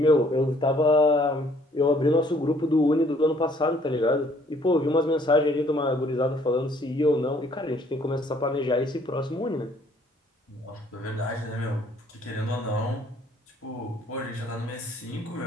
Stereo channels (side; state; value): both; normal; correlation 0.61